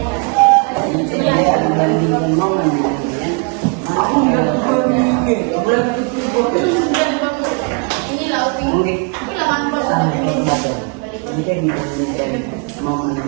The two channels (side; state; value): left; quieter; 35.9 dB